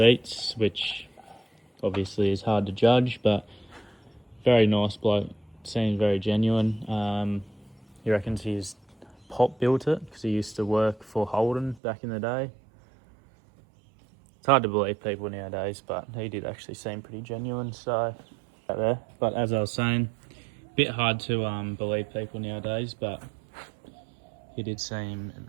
which obviously is hard to judge, but very nice bloke. Seems very genuine. He reckons his pop built it because he used to work for Holden back in the day. It's hard to believe people nowadays, but he did actually seem pretty genuine. So, there. But as I was saying, a bit hard to believe people nowadays, but he did seem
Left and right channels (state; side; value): drops out; left; at 11.8 s